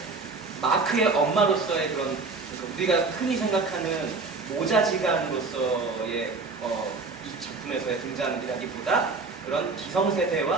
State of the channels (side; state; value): left; quieter; 4.0 dB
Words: 마크의 엄마로서의 그런 그러니까 우리가 흔히 생각하는 모자지간으로서의 이 작품에서의 등장이라기보다 그런